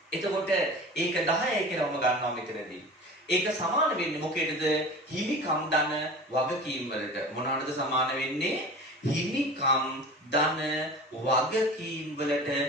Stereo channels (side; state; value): both; normal; correlation 0.36